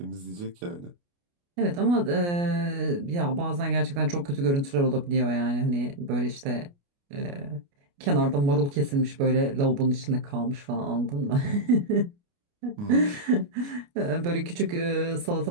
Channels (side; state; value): left; late; 29 ms